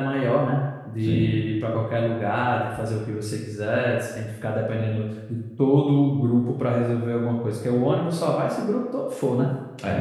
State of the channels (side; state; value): both; identical; correlation 1.00